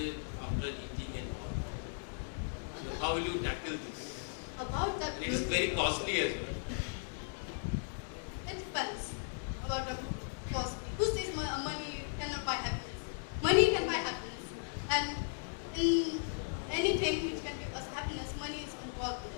after eating it. So how will you tackle this? About that, It is very costly as well. it depends about the cost. Who says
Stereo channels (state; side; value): silent; right; digital silence